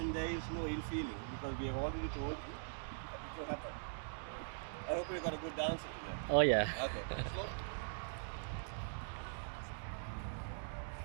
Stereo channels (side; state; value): left; silent; digital silence